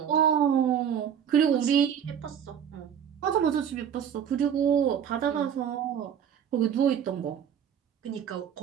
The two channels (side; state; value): left; quieter; 8.5 dB